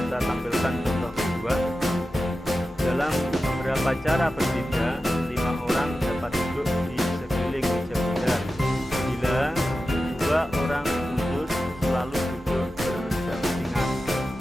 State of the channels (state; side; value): normal; both; correlation 0.93